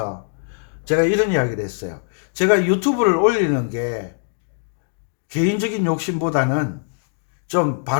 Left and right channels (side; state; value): right; silent; digital silence